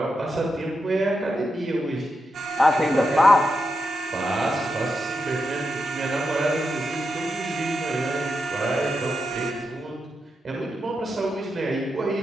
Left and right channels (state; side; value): normal; both; correlation 0.86